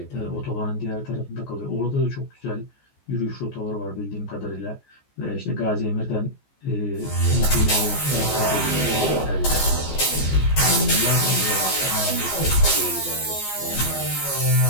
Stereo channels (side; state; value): right; late; 14 ms